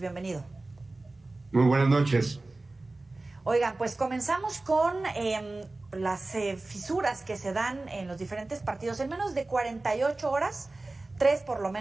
Muy buenas noches. Oigan, pues comenzamos con las fisuras que se dan en los diferentes partidos. En menos de 48 horas, 3 por lo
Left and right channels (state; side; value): quieter; left; 3.1 dB